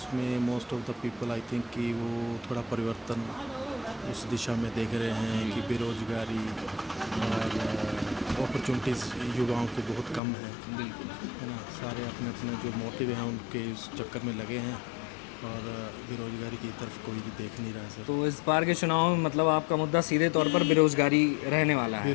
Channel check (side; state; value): right; drops out; at 10.2 s